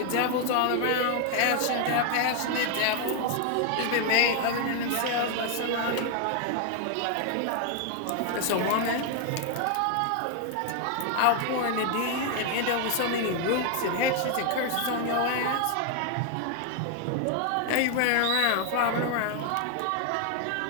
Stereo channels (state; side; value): different; both; correlation 0.00